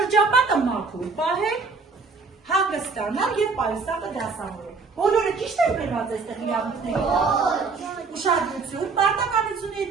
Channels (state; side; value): quieter; left; 4.5 dB